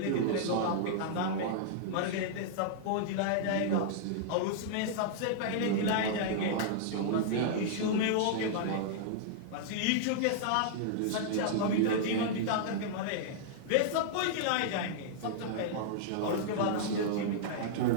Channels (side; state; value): both; different; correlation -0.02